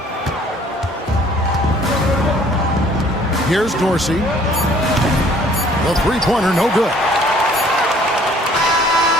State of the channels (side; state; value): both; normal; correlation 0.57